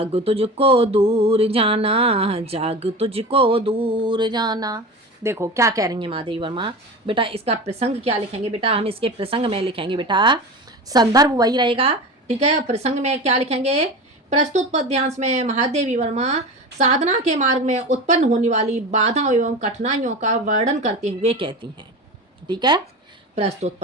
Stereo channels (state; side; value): normal; both; correlation 0.29